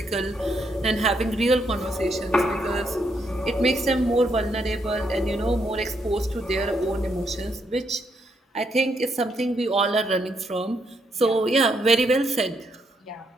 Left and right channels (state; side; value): normal; both; correlation 0.77